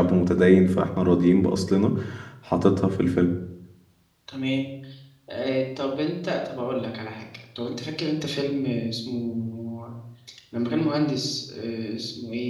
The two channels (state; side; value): identical; both; correlation 1.00